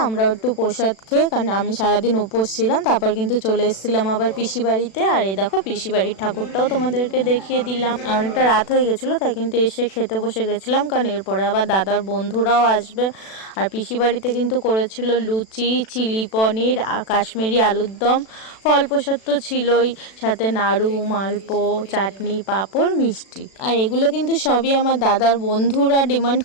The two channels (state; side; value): late; right; 36 ms